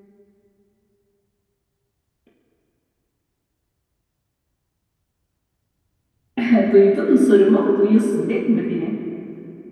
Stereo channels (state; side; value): identical; both; correlation 1.00